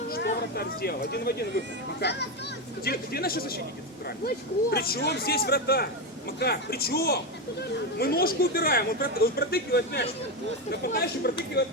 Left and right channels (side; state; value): both; normal; correlation 0.12